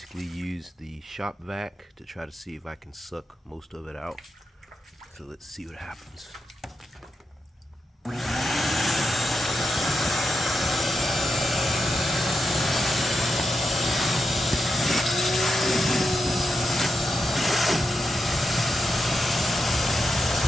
use the shop vac to try to see if I can suck most of it out. So let's see what happens.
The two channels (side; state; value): both; normal; correlation 0.86